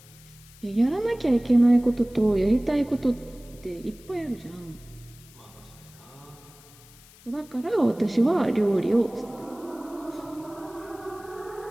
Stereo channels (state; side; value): noise; left; hiss, 24 dB below the sound